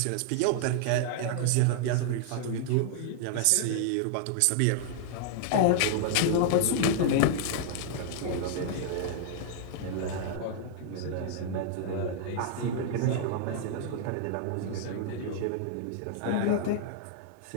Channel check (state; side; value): different; both; correlation -0.01